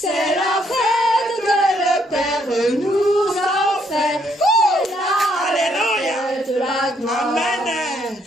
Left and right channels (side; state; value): both; normal; correlation 0.71